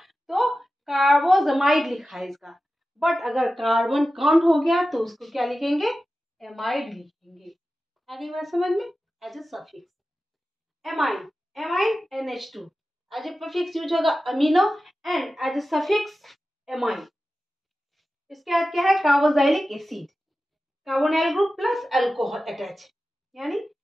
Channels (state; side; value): normal; both; correlation 0.94